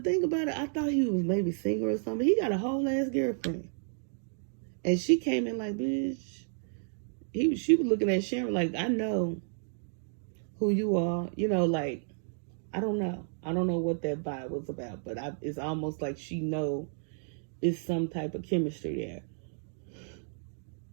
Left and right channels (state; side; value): silent; left; digital silence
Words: about it, I thought he was maybe single or something. He got a whole ass girlfriend, and she came in like, bitch. She was looking at Sharon like, I know who you are. Like, I don't know. I don't know what that vibe was about, but it's almost like she know it's some type of chemistry there.